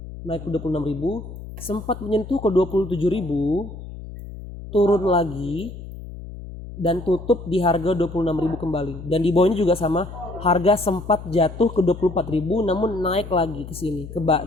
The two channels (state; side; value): noise; left; hum, 12 dB below the sound